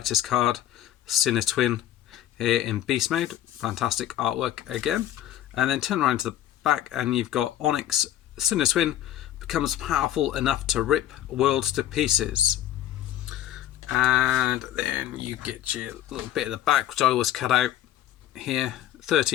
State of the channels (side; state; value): right; quieter; 12.1 dB